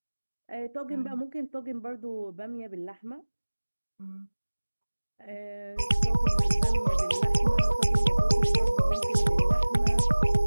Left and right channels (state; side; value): inverted; both; correlation -1.00